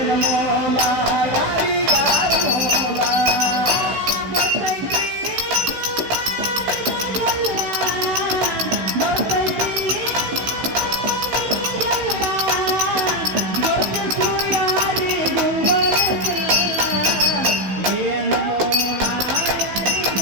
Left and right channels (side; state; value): left; late; 15 ms